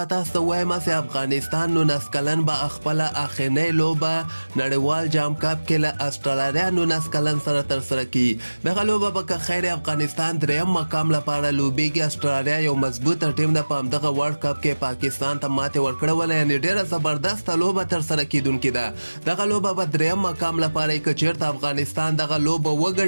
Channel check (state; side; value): inverted; both; correlation -1.00